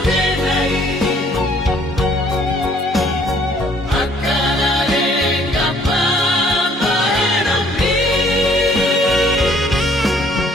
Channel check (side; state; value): both; normal; correlation 0.60